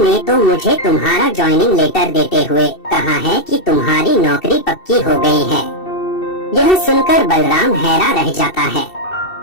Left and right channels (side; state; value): right; late; 2.7 ms